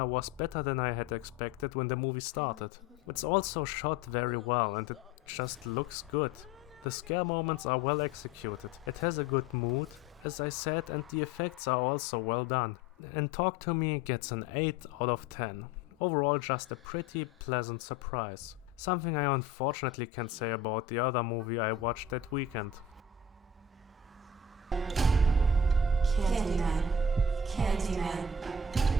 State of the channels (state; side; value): quieter; right; 3.5 dB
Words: was better than I had expected when the movie started. It's also shot very well and it just looks good. The scare moments are well executed. It has a good mood, as I said, and the effects are also well done. And Talk to Me gets an 8 out of 10. Overall, just a pretty pleasant surprise. Something I unfortunately can't say about the other movie I watched that weekend. Candyman. Candyman.